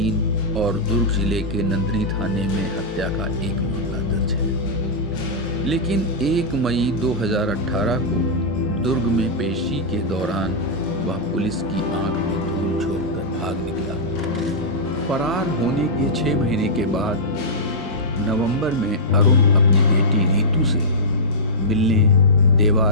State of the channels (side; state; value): both; normal; correlation -0.11